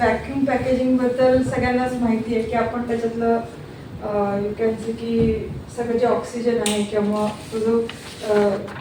पॅकेजिंगबद्दल सगळ्यांनाच माहिती आहे की आपण त्याच्यातलं यू कॅन से की सगळं जे ऑक्सिजन आहे किंवा तो जो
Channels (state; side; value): identical; both; correlation 1.00